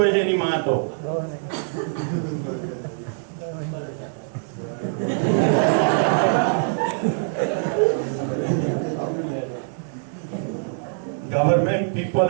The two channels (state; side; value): silent; left; digital silence